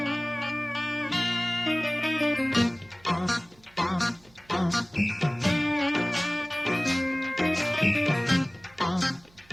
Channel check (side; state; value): right; noise; hum, 29 dB below the sound